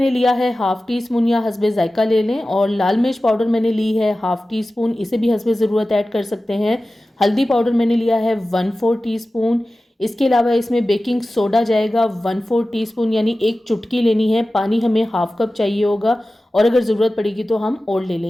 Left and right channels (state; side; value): normal; both; correlation 0.95